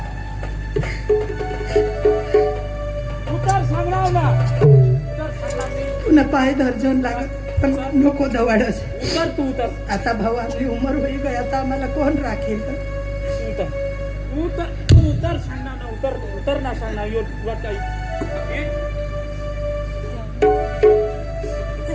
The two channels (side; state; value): both; identical; correlation 1.00